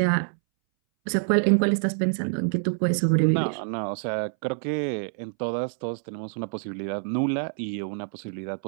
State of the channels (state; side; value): silent; left; 61 dB below the other